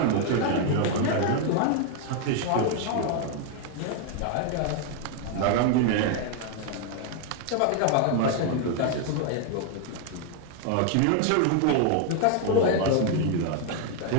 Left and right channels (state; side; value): different; both; correlation 0.00